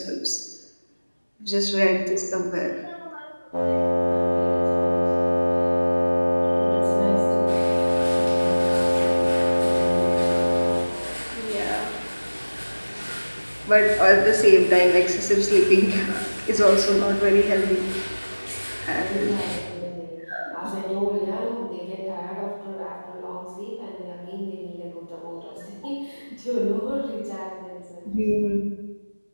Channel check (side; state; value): both; inverted; correlation -1.00